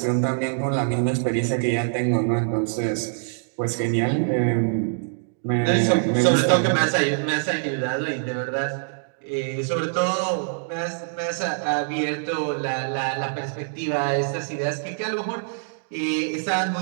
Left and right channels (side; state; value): left; silent; digital silence